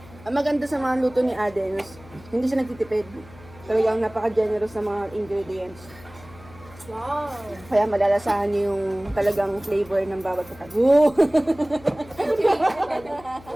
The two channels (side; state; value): left; noise; hum, 21 dB below the sound